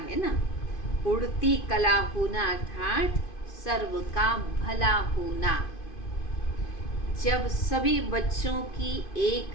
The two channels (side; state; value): right; late; 2.5 ms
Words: ना। उड़ती कला होना अर्थात सर्व का भला होना। जब सभी बच्चों की